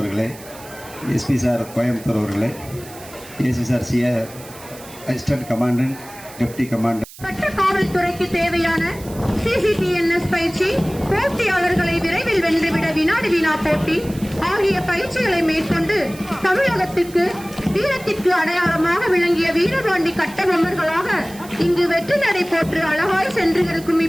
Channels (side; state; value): right; noise; hiss, 19 dB below the sound